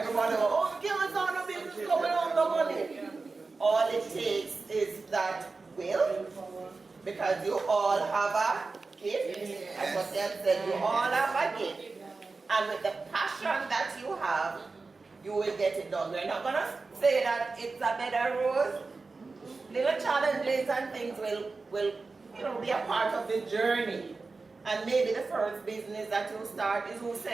goes, oh, give us all the business coming on the money. All it takes is that will, because you all have a gift. As what they have said, you all have a gift. And with the passion that you have, you will get it done. We're not going to say that it's a bed of roses. Little challenges and things will be a part of the journey. And maybe the first business that you start is who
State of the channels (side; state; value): left; quieter; 4.0 dB